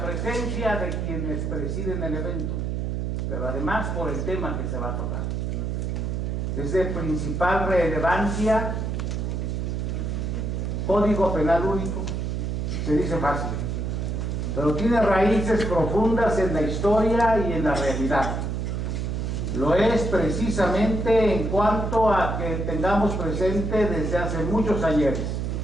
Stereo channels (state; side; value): noise; right; hum, 1 dB below the sound